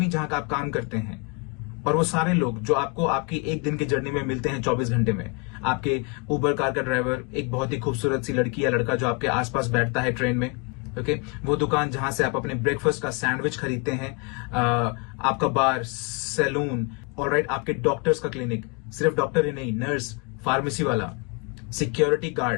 जहां का आप काम करते हैं, और वो सारे लोग जो आपको आपकी एक दिन की जर्नी में मिलते हैं 24 घंटे में, आपके उबर कार का ड्राइवर, एक बहुत ही खूबसूरत सी लड़की या लड़का जो आपके आसपास बैठता है ट्रेन में, ओके, वो दुकान जहां से आप अपने ब्रेकफास्ट का सैंडविच खरीदते हैं, आपका बार, सैलून, ऑलराइट, आपके डॉक्टर्स का क्लिनिक, सिर्फ डॉक्टर ही नहीं, नर्स, फार्मेसी वाला, security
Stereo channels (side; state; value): right; quieter; 30.5 dB